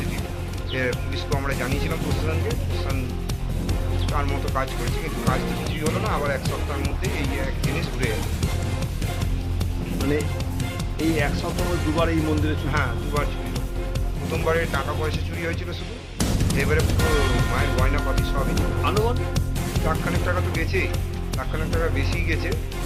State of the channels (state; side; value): identical; both; correlation 1.00